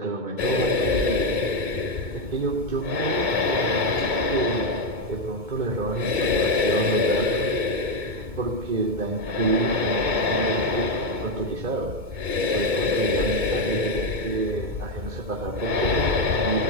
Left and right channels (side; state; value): left; late; 2.2 ms